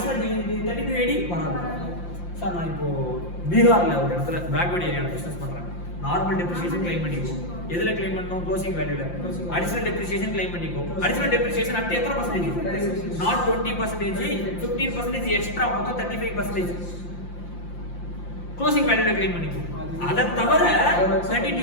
3280 வராது. சார் நான் இப்போ பீகார்ல ஒரு இடத்துல பேக்வர்ட் ஏரியாவில் பிசினஸ் பண்றேன், நார்மல் டெப்ரிசியேஷன் கிளைம் பண்ணிக்கோ. எதுல கிளைம் பண்ணணும்? க்ளோசிங் வேல்யூல. அடிஷனல் டெப்ரிசியேஷன் கிளைம் பண்ணிக்கோ. அடிஷனல் டெப்ரிசியேஷன் அட் எத்தனை பர்சன்டேஜ்? நாட் 20%, 15% எக்ஸ்ட்ரா, மொத்தம் 35%. க்ளோசிங் வேல்யூல கிளைம் பண்ணிக்கோ. அதை தவிர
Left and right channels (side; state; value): right; late; 5.7 ms